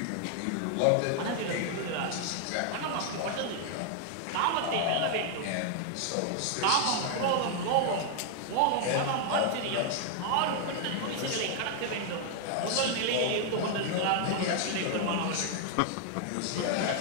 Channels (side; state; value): both; different; correlation 0.00